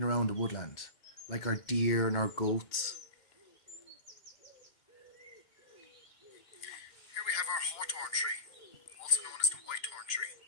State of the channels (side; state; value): right; late; 2.1 ms